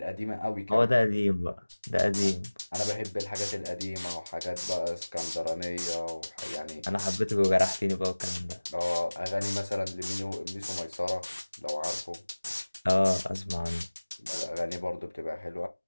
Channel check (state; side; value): inverted; both; correlation -1.00